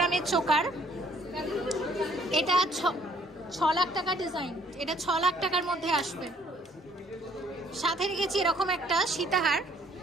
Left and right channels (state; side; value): normal; both; correlation 0.62